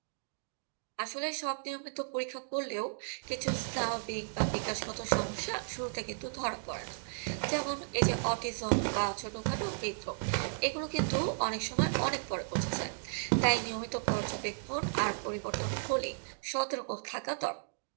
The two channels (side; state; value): left; silent; digital silence